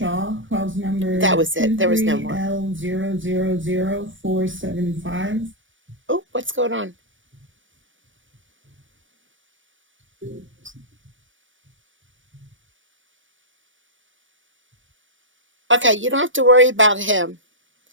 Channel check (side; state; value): left; late; 0.56 ms